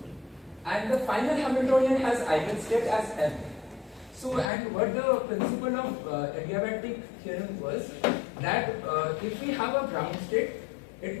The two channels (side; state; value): right; drops out; at 4.5 s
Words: And the final Hamiltonian has eigenstate as m. So and what the principle of adiabatic theorem was that if we have a ground state, it